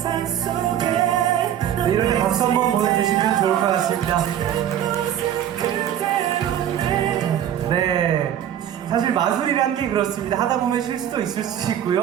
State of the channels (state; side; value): quieter; left; 10.5 dB